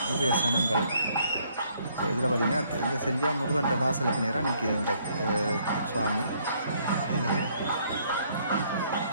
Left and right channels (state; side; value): inverted; both; correlation -0.67